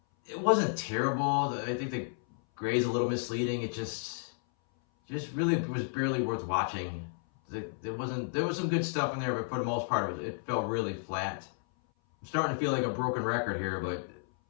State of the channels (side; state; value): right; silent; 56 dB below the other